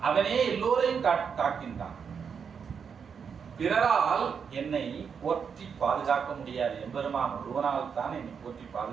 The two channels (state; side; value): quieter; left; 6.6 dB